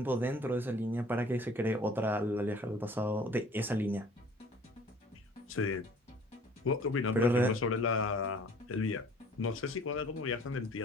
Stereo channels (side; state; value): both; normal; correlation 0.51